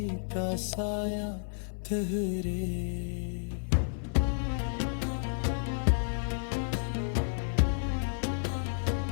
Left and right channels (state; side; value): silent; right; 57 dB below the other